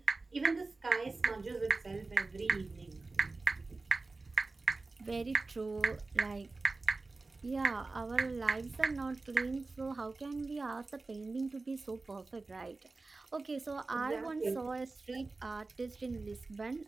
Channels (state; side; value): quieter; left; 3.6 dB